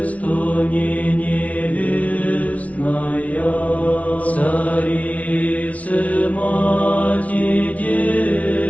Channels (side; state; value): right; late; 0.067 ms